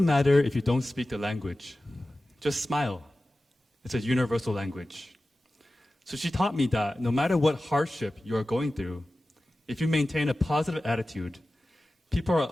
matter if you don't speak the language. Just smile. It's a universal language." So she taught me that no matter what hardship you are going through, if you maintain a positive attitude, people are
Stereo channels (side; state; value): both; normal; correlation 0.95